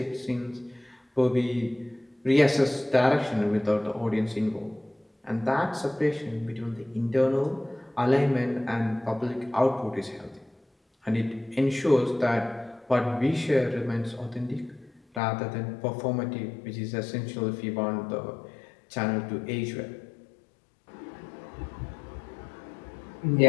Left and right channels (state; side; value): drops out; right; at 15.2 s